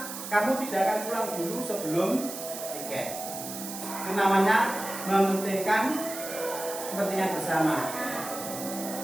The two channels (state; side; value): noise; right; hiss, 9 dB below the sound